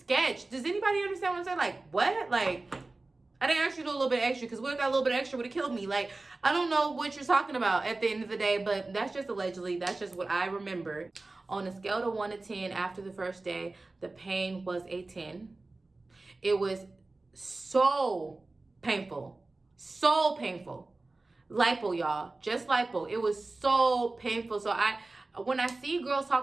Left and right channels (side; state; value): left; quieter; 3.2 dB